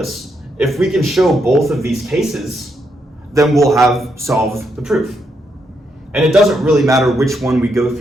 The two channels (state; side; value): normal; both; correlation 0.79